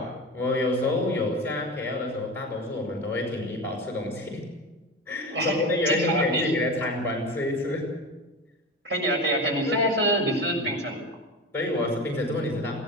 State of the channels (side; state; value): both; normal; correlation 0.26